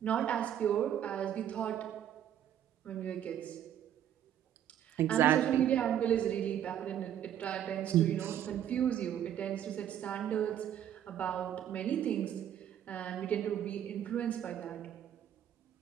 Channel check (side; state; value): left; quieter; 10.3 dB